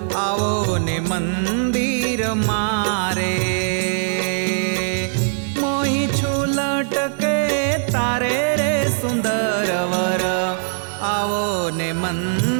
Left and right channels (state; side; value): silent; left; digital silence